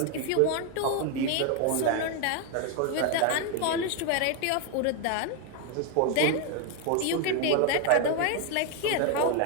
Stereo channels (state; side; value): different; both; correlation 0.01